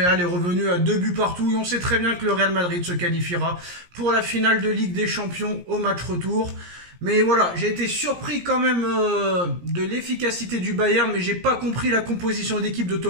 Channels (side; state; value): left; late; 17 ms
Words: est revenu à 2 buts partout et on sait très bien que le Real Madrid se qualifiera pour la finale de Ligue des Champions au match retour. Mais voilà, j'ai été surpris quand même de l'efficacité du Bayern, mais j'ai pas compris la composition d'équipe de